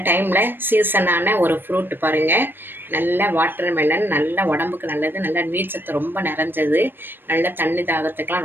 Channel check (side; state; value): left; late; 0.096 ms